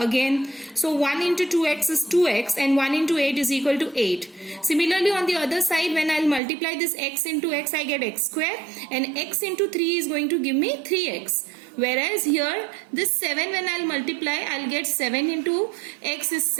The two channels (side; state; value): left; drops out; at 6.4 s